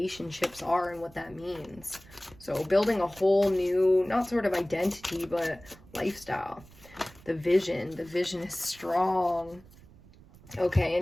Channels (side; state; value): right; noise; rumble, 23 dB below the sound